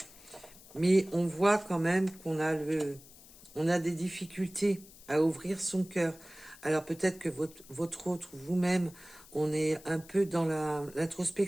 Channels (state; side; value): noise; left; hiss, 21 dB below the sound